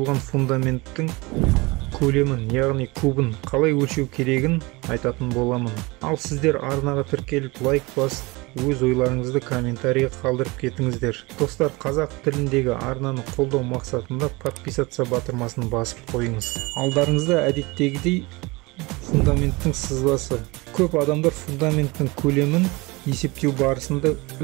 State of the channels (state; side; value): quieter; left; 24.2 dB